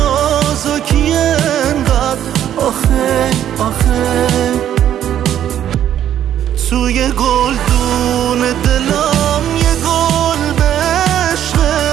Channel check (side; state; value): left; quieter; 10.7 dB